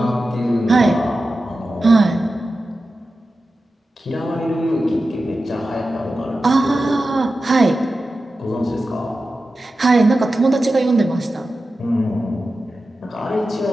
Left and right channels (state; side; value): normal; both; correlation 0.93